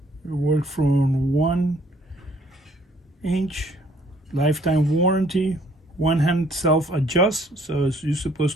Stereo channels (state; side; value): normal; both; correlation 0.61